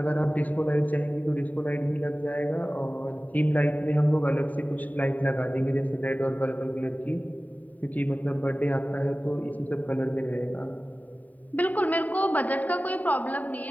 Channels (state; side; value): late; right; 0.075 ms